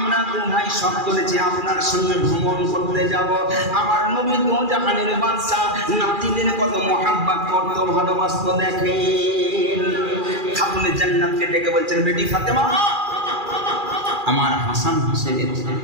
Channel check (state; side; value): late; left; 2.4 ms